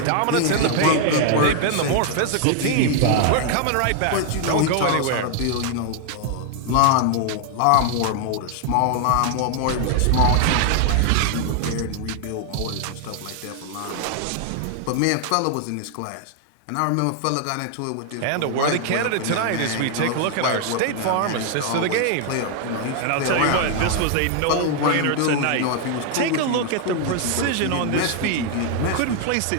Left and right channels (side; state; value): both; different; correlation 0.00